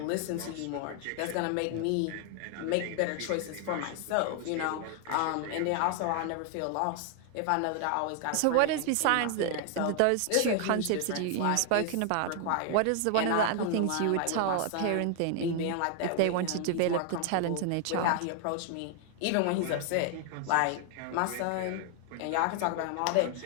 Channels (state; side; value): different; both; correlation 0.00